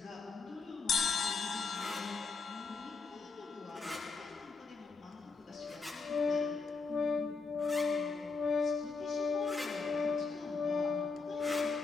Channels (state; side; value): quieter; right; 4.5 dB